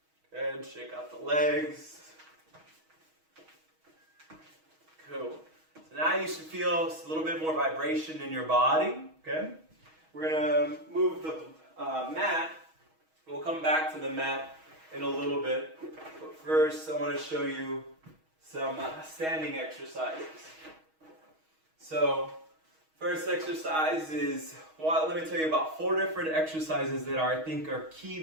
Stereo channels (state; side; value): late; left; 6.3 ms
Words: Good, shake out the legs. Cool. So now you should feel a little bit more vibration in your body. Okay, we're gonna move the mat. We'll come back to the mat in a little bit. But first, I want to show you some standing exercises. So, first exercise is, well, let me tell you about 4 different exercises that I think are key